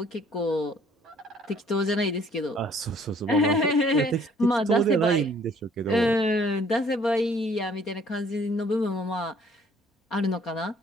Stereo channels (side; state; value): both; normal; correlation 0.59